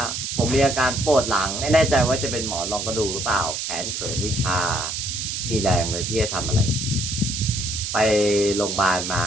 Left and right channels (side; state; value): right; noise; hiss, 4 dB below the sound